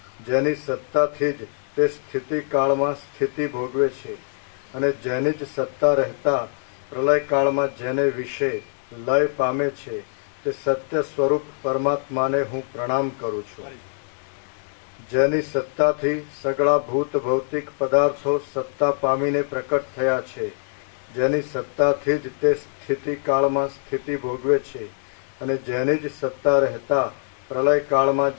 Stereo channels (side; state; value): right; silent; 63 dB below the other